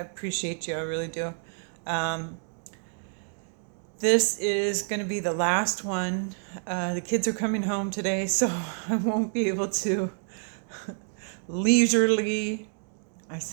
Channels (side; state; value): left; silent; 55 dB below the other